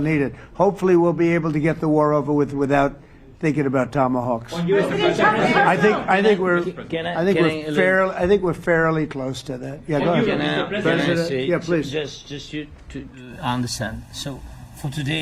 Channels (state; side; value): identical; both; correlation 1.00